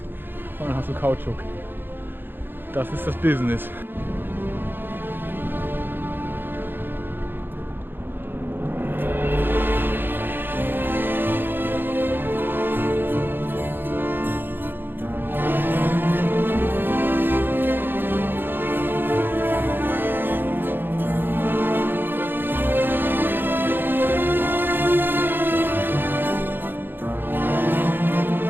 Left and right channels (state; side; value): late; left; 0.098 ms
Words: und dann hast du Kautschuk. Das ist das Business.